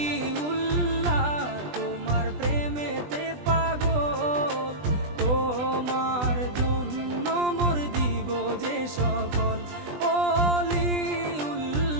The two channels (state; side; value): late; left; 20 ms